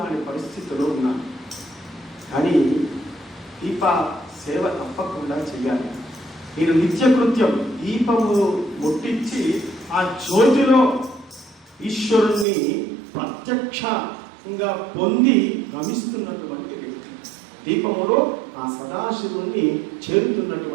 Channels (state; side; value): drops out; left; at 12.5 s